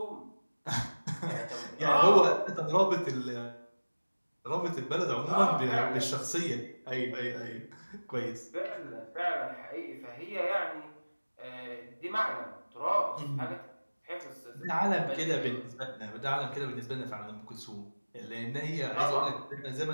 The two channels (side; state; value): both; inverted; correlation -1.00